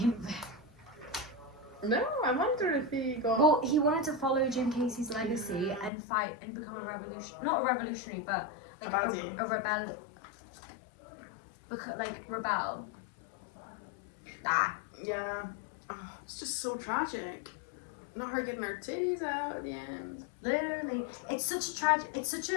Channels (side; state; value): right; drops out; at 5.9 s